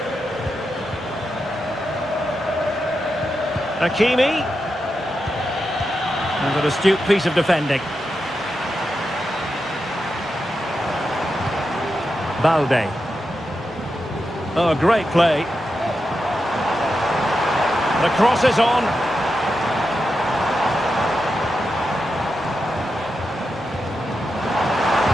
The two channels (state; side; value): normal; both; correlation 0.88